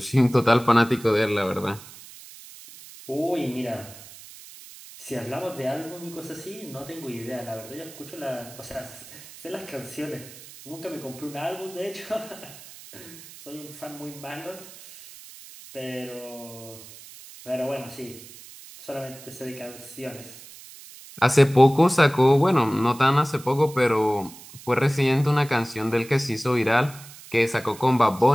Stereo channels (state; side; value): noise; right; hiss, 18 dB below the sound